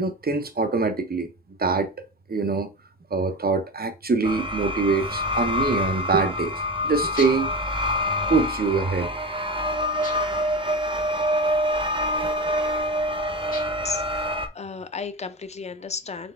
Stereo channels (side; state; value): both; normal; correlation 0.25